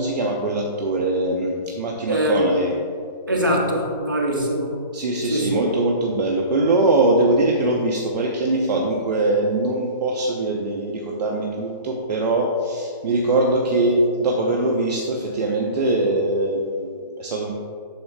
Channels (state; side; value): inverted; both; correlation -0.36